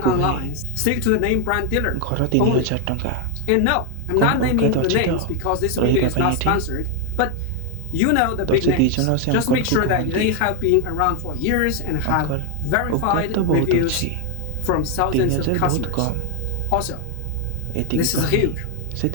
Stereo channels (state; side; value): different; both; correlation 0.01